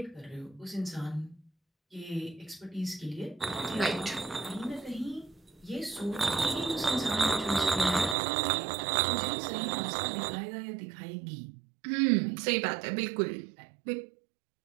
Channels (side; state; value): left; drops out; at 8.2 s